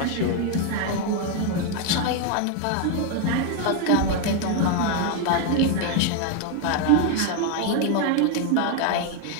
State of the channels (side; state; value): both; different; correlation 0.01